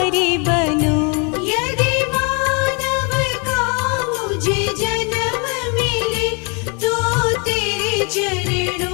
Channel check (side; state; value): right; quieter; 33.6 dB